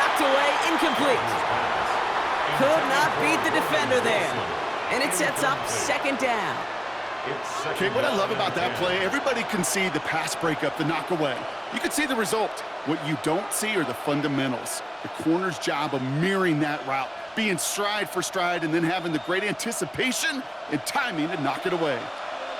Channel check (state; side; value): identical; both; correlation 1.00